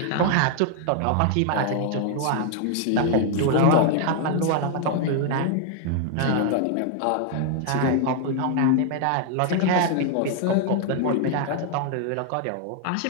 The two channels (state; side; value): different; both; correlation 0.00